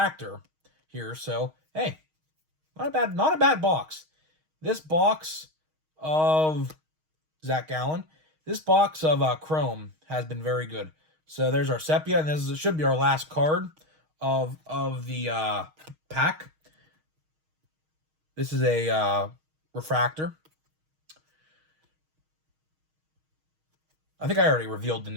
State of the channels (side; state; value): left; late; 6.4 ms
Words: here. So, hey, not a bad box. This box of Zach Gallen, this box of Chrome has been very good. So there's our sepia, and this should be our last card of the pack. This is a refractor. I think I already revealed the